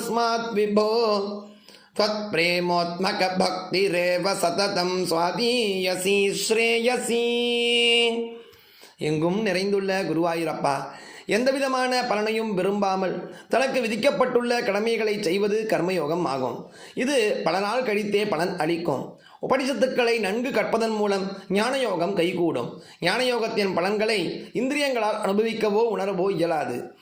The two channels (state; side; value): identical; both; correlation 1.00